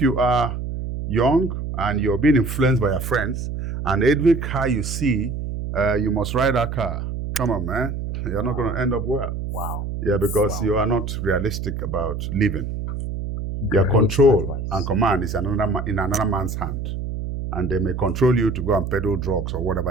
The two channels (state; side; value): noise; right; hum, 5 dB below the sound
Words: are young and you're being influenced by your friends, and every car you see, you must ride that car. Come on, man. You're not going to end up well. Wow. Yeah, because you are not realistic about living. Your control and command is in another man's hand. And they may control you to go and peddle drugs or